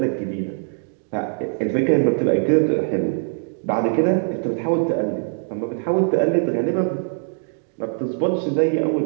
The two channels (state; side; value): silent; left; digital silence